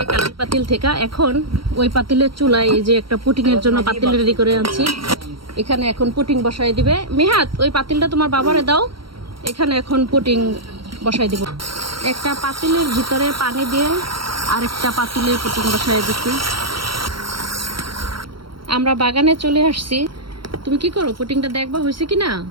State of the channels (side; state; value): left; late; 0.73 ms